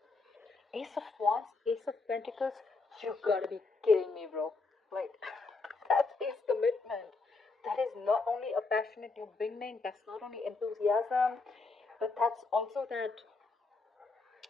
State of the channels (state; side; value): quieter; right; 3.9 dB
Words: Ace of Wands, Ace of Pentacles, you gotta be kidding me, bro. Like, that is commitment. That is not only a passionate new beginning, that's not only enthusiasm, but that's also that